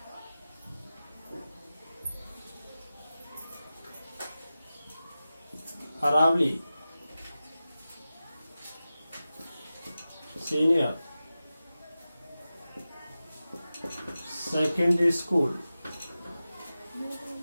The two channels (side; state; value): both; inverted; correlation -0.95